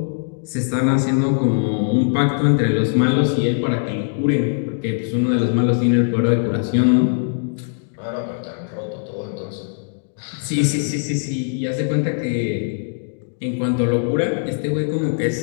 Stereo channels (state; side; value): silent; right; digital silence